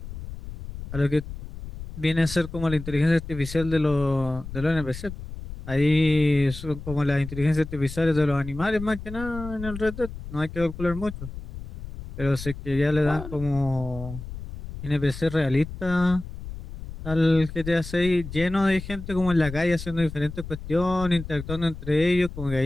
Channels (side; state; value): left; noise; rumble, 11 dB below the sound